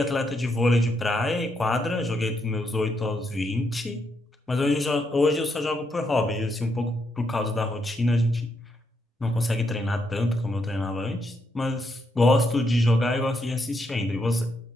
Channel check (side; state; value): both; normal; correlation 0.79